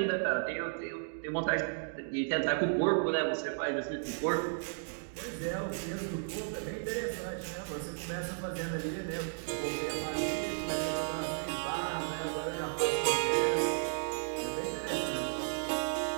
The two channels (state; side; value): silent; left; digital silence